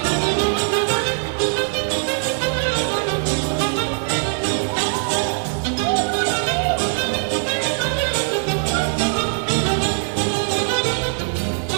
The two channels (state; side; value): silent; left; 65 dB below the other